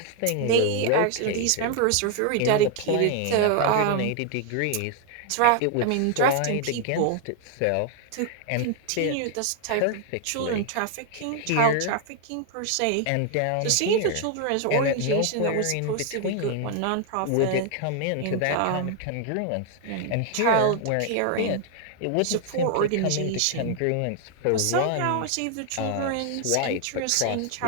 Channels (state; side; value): different; both; correlation 0.00